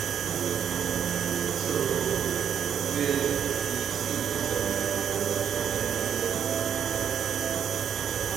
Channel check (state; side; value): quieter; left; 8.4 dB